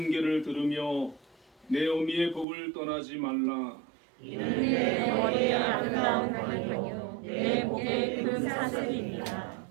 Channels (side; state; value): left; drops out; at 2.5 s